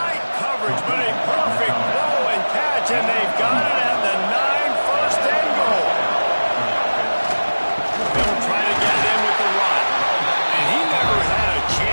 coverage, but a perfect blow and catch, and they've got it at the 9, first and goal. They'll try to get it in with the run. And he never had a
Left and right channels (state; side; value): inverted; both; correlation -1.00